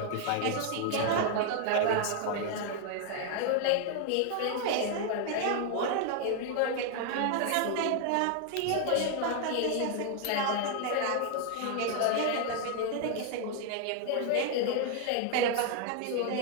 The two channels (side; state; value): both; different; correlation 0.00